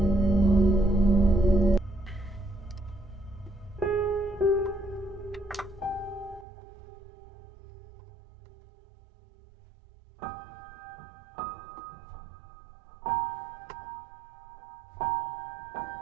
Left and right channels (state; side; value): drops out; left; at 6.5 s